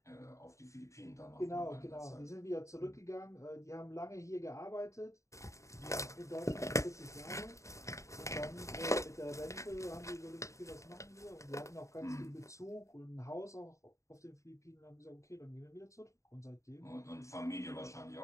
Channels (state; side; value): late; right; 0.15 ms